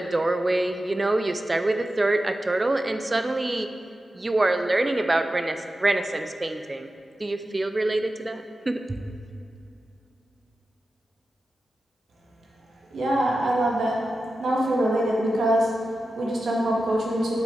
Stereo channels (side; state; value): both; normal; correlation 0.92